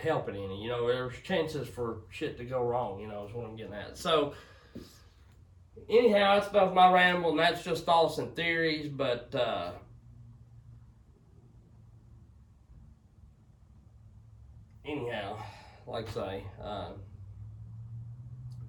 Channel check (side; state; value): both; identical; correlation 1.00